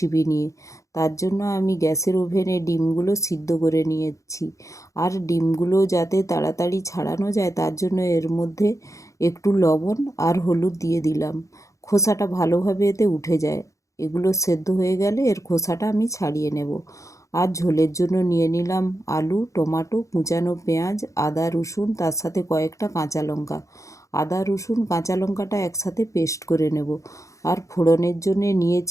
নিয়ে। তার জন্য আমি গ্যাসের ওভেনে ডিমগুলো সিদ্ধ করে নিয়েছি। আর ডিমগুলো যাতে তাড়াতাড়ি ছাড়ানো যায় তার জন্য এর মধ্যে একটু লবণ আর হলুদ দিয়ে দিলাম। খোসাটা ভালোভাবে এতে উঠে যায়। এগুলো সেদ্ধ হয়ে গেলে এর খোসাটা আমি ছাড়িয়ে নেব। আর ঝোলের জন্য নিয়ে নিলাম আলু, টমেটো, কুচানো পেঁয়াজ, আদা, রসুন, তার সাথে কয়েকটা কাঁচা লঙ্কা। আদা, রসুন, কাঁচা লঙ্কাটা একসাথে পেস্ট করে নেব। আর ফোড়নের জন্য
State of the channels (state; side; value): late; right; 0.15 ms